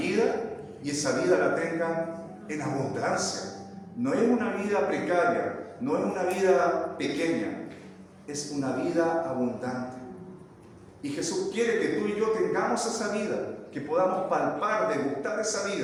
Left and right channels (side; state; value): both; identical; correlation 1.00